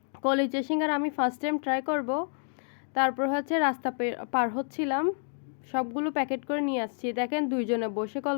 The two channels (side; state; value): right; silent; digital silence